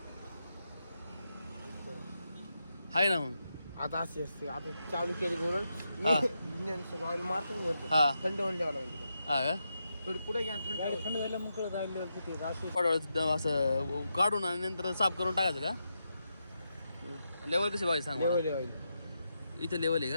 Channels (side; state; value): both; inverted; correlation -0.85